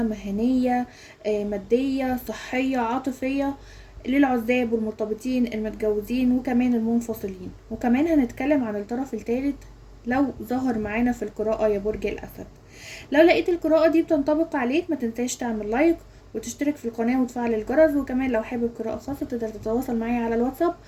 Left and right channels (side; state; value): both; identical; correlation 1.00